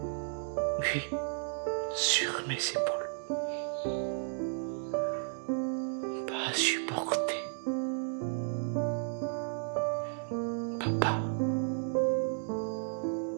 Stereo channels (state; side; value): silent; left; digital silence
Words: Oui, sur mes épaules. Pas à supporter. Papa.